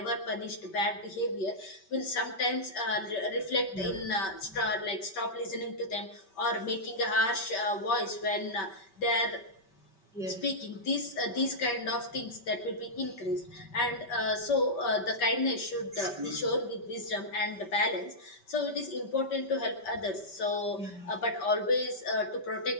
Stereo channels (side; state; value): right; late; 5.2 ms